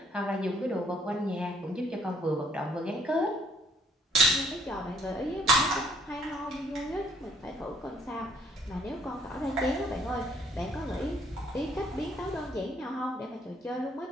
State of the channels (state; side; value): normal; both; correlation 0.64